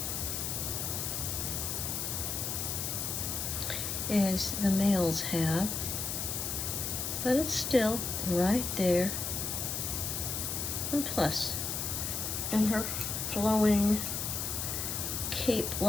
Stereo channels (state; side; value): noise; left; hiss, 2 dB below the sound